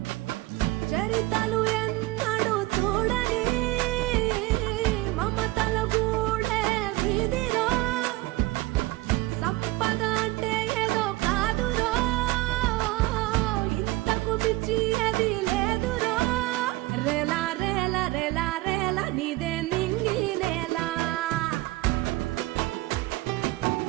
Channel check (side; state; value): left; quieter; 19.4 dB